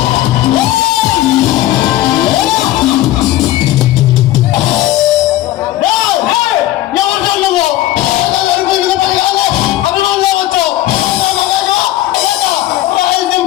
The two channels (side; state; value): right; quieter; 14.9 dB